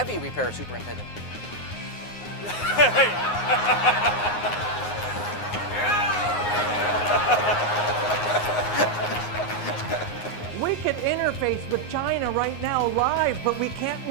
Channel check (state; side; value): late; right; 9.6 ms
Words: repair superintendent. We can interface with China right now live, but we can't